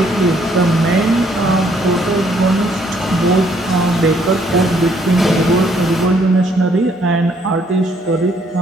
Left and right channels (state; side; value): normal; both; correlation 0.67